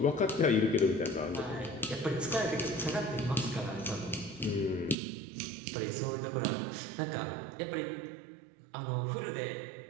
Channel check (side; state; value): left; drops out; at 5.0 s